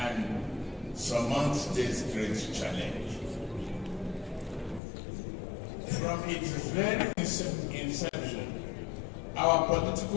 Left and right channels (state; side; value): drops out; right; at 4.8 s